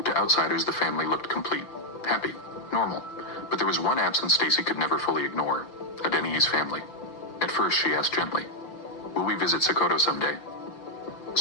To outsiders, the family looked complete, happy, normal. But there was one absence Stacy could never fully ignore: Adeniyi's family. At first, she asked gently, "Will we visit Sokoto someday?"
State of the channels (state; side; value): late; right; 6.0 ms